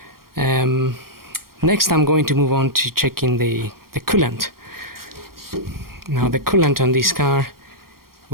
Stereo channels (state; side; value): late; left; 0.93 ms